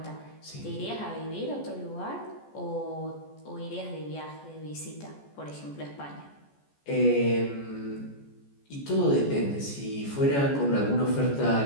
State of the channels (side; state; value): right; late; 14 ms